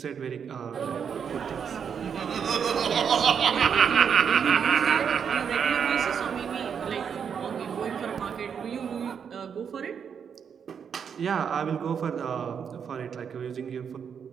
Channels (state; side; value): quieter; left; 7.2 dB